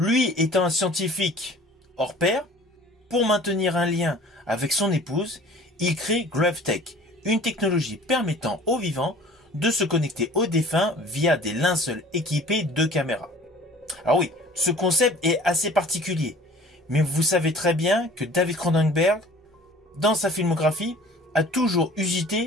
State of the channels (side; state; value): both; normal; correlation 0.47